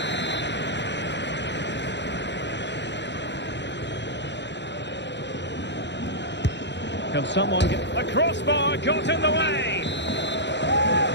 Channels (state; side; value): late; right; 0.52 ms